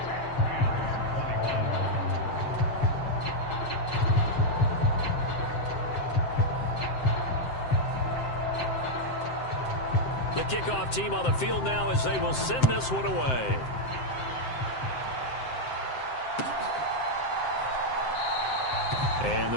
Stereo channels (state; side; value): late; right; 7.7 ms